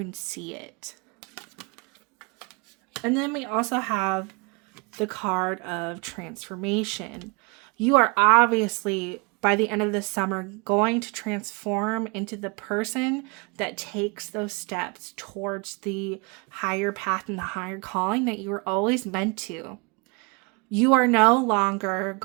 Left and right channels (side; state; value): left; quieter; 31.2 dB